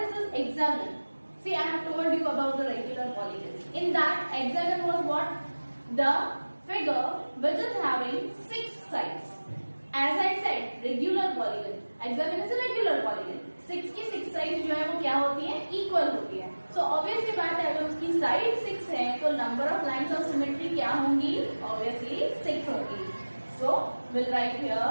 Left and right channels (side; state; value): both; inverted; correlation -1.00